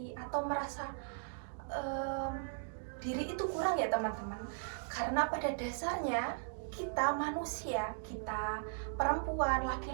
atau merasa diri itu kurang ya teman-teman. Karena pada dasarnya kita manusia, kita perempuan,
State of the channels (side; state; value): left; silent; digital silence